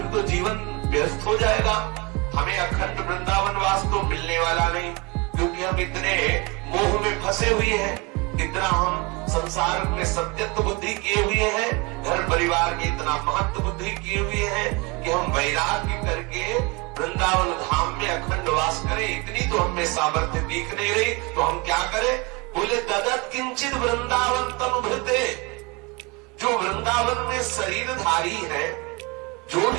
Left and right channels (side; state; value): left; quieter; 27.5 dB